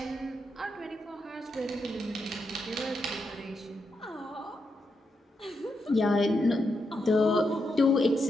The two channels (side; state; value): both; normal; correlation 0.83